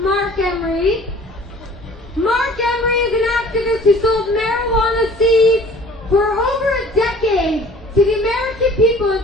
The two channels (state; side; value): normal; both; correlation 0.50